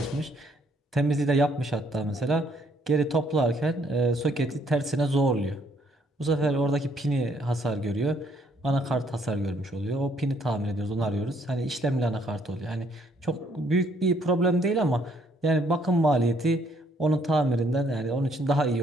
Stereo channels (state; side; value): normal; both; correlation 0.67